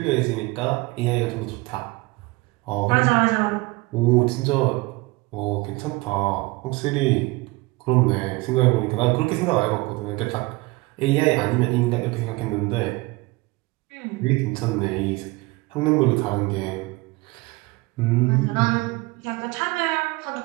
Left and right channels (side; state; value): left; quieter; 23.2 dB